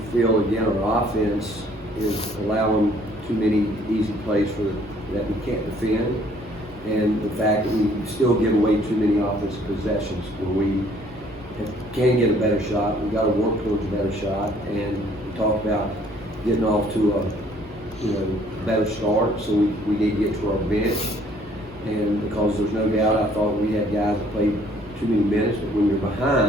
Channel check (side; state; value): both; normal; correlation 0.61